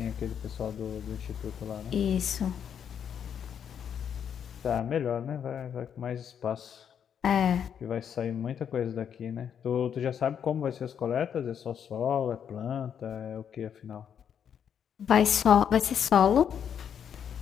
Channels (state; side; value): quieter; right; 8.3 dB